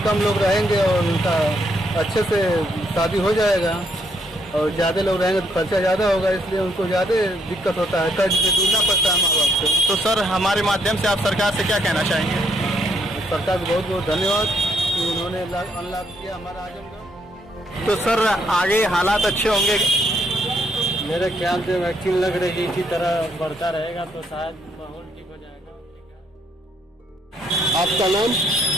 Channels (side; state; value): both; normal; correlation 0.72